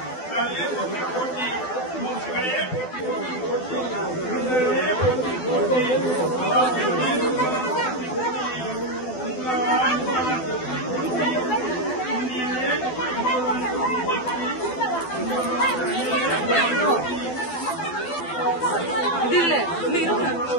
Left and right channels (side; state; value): right; late; 12 ms